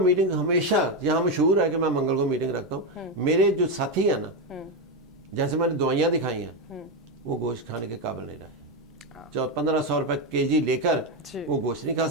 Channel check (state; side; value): normal; both; correlation 0.09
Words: ہمیشہ یہاں مشہور ہے کہ میں منگل کو میٹنگ رکھتا ہوں. میرے جو ساتھی ہیں نا، جیسے میں نے دوائیاں دکھائی ہیں، وہ گوشت کھانے کے قابل نہیں رہے. 1500 روپے kg لے کر وہ گوشت نہیں کھا